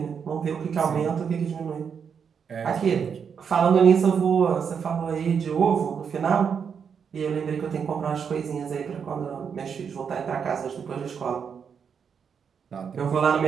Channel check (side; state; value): left; quieter; 6.8 dB